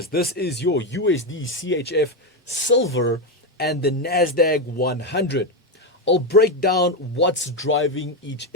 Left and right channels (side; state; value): both; normal; correlation 0.09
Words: This is your USD, CHF, silver, and the Nasdaq 100. I'll break down what's driving each